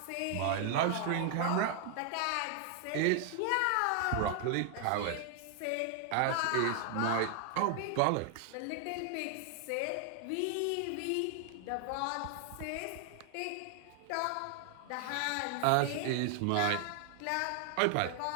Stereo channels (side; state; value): both; different; correlation 0.00